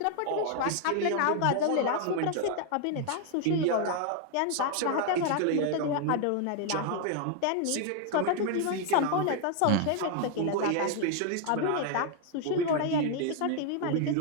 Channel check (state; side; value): different; both; correlation 0.00